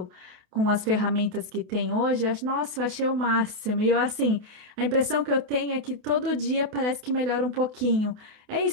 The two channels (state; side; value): late; left; 28 ms